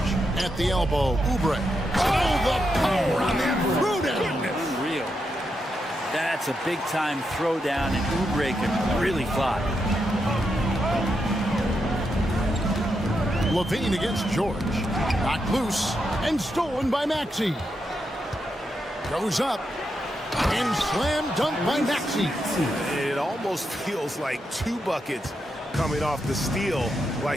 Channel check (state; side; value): normal; both; correlation 0.84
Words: at the elbow. Oubre. Oh, the power on that throwdown. Unreal. That's a big-time throwdown, and Oubre can really fly. Levine against George. Knocked loose and stolen by Maxey. Goes up and slam dunk by Maxey. It almost feels like 2 buckets coming off the steal